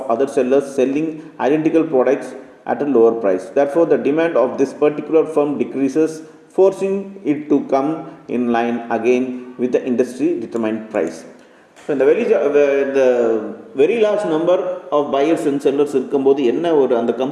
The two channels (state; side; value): identical; both; correlation 1.00